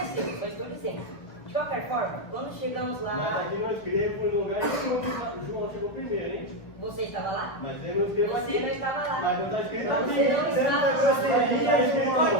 só estou dizendo. De qualquer forma, quando chegamos lá... Mas aqui não escrevo em lugar nenhum que João chegou primeiro, hein? Você estava lá? Mas ele não escreveu aqui. Você não estava lá. Mas não está escrito Mas aqui. você não estava lá. Está escrito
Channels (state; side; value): late; right; 2.0 ms